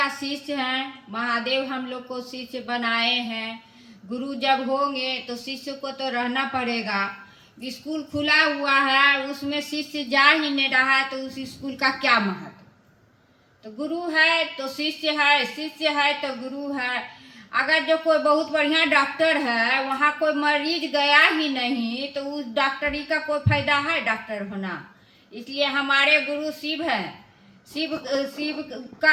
शिष्य हैं। महादेव हम लोग को शिष्य बनाए हैं। गुरु जब होंगे तो शिष्य को तो रहना पड़ेगा। स्कूल खुला हुआ है, उसमें शिष्य जा ही नहीं रहा है तो उस स्कूल का क्या महत्व। तो गुरु है तो शिष्य है, शिष्य है तो गुरु है। अगर जो कोई बहुत बढ़िया डॉक्टर है, वहाँ कोई मरीज गया ही नहीं तो उस डॉक्टरी का कोई फायदा है डॉक्टर होना। इसलिए हमारे गुरु शिव है। शिव शिव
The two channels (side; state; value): both; identical; correlation 1.00